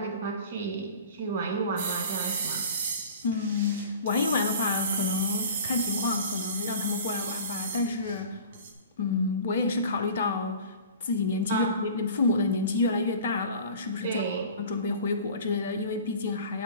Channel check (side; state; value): both; inverted; correlation -0.42